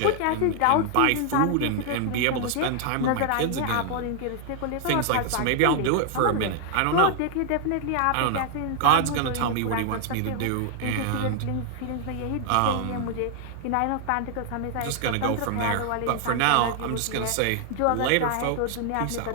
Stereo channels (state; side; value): different; both; correlation 0.00